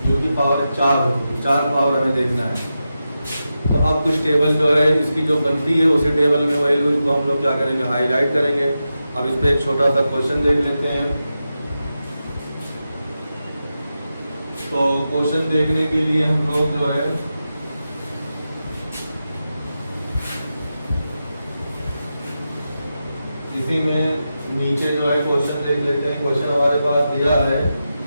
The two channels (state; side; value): inverted; both; correlation -0.90